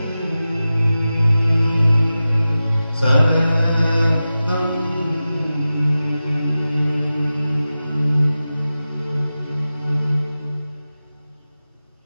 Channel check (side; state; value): both; inverted; correlation -0.94